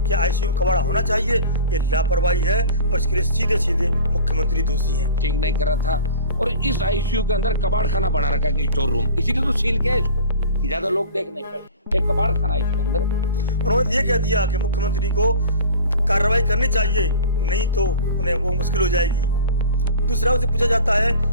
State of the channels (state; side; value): inverted; both; correlation -0.40